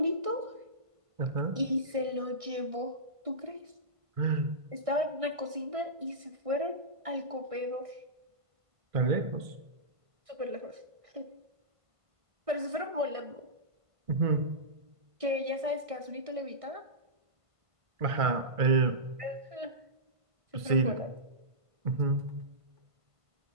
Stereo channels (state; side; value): late; left; 1.6 ms